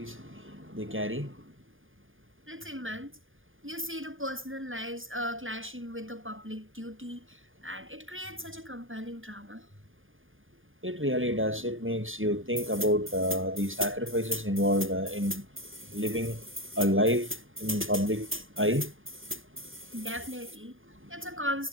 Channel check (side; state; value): left; late; 0.59 ms